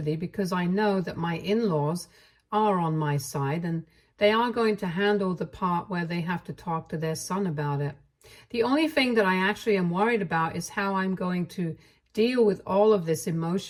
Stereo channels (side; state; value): both; identical; correlation 1.00